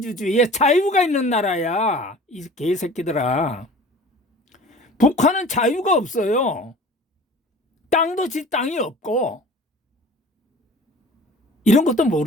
자유가 있는 나라야 이 개새끼들아. 북한은 자유가 없어요. 땅도 지 땅이 없고. 이런 것도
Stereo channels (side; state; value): both; normal; correlation 0.43